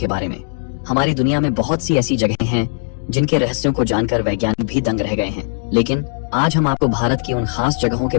बारे में। हमारी दुनिया में बहुत सी ऐसी जगहें हैं जिनके रहस्यों को जानकर वैज्ञानिक भी दंग रह गए हैं, लेकिन आज हम आपको भारत की उन खास जगहों के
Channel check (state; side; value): silent; right; digital silence